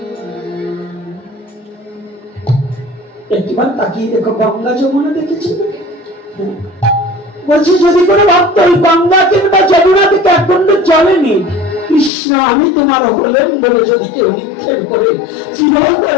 একটিবার তাকিয়ে দেখো, গঙ্গা যমুনা দেখেছি, বলছি যদি কোনো ভক্ত ওই গঙ্গা কিংবা যমুনা থেকে এক কুণ্ড জলে নেই, কৃষ্ণ আমি তোমার হলেন বলে যদি কেউ নিক্ষেপ করে,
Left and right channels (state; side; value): drops out; right; at 12.1 s